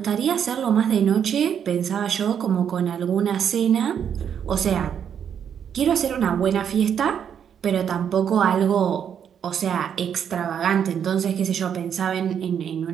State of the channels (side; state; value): left; quieter; 8.3 dB